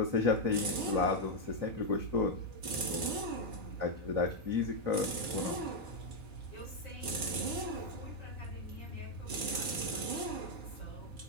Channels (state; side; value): late; left; 4.6 ms